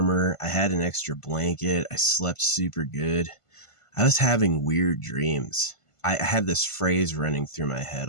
I had an extra blanket. I slept super good. I was having weird dreams. I had this phrase running through my head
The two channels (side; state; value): right; late; 1.5 ms